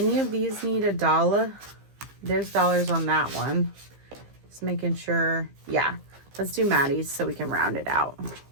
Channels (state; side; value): late; left; 15 ms